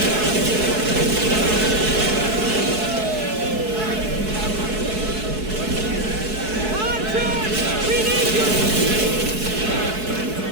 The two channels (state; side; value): late; left; 4.7 ms